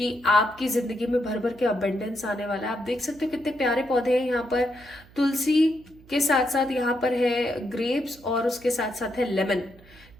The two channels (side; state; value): right; noise; hum, 24 dB below the sound